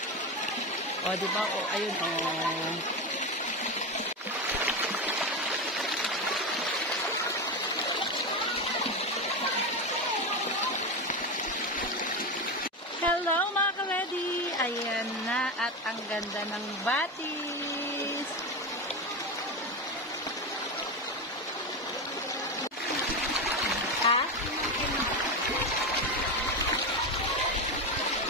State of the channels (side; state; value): both; normal; correlation 0.17